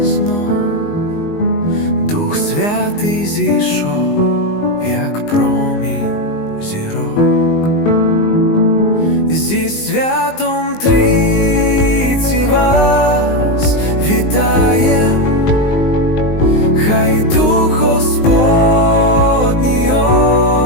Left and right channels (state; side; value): late; right; 19 ms